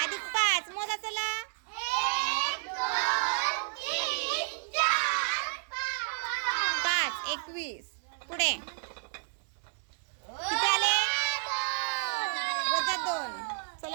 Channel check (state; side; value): silent; left; digital silence